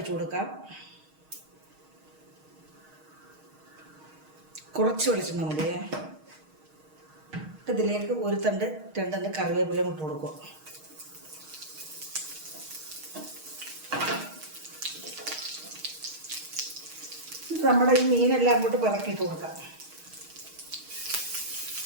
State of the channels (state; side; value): late; left; 6.4 ms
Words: കൊടുക്കാം. കുറച്ച് വെളിച്ചെണ്ണ മതിയേ. ഇതിലേക്ക് 1 തണ്ട് 2 തണ്ട് കറിവേപ്പിലയും ഇട്ട് കൊടുക്കും. നമ്മുടെ ഈ മീനെല്ലാം അങ്ങോട്ട് പിറക്കിയിട്ട് കൊടുക്കാം.